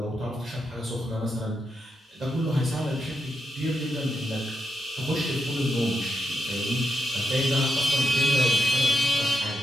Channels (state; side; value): normal; both; correlation 0.84